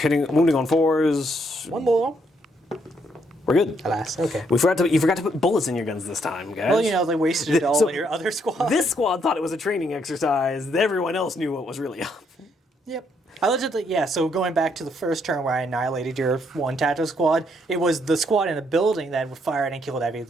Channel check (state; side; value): normal; both; correlation 0.73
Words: wounding on 4s. 1 more. We're good. Alas, okay. You forgot to put bullets in your guns this time, guys. Well, you know, they wasted it all So, in your other squad. This squad thought it was a training exercise. Everyone else knew what was really up. Yep. I legitimately, yeah, so going back to the first turn where I annihilated your one tactical squad, it was the squad in the building that fired and killed